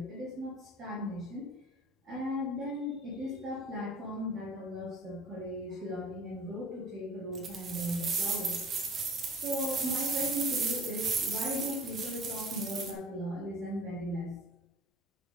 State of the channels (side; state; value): both; normal; correlation 0.47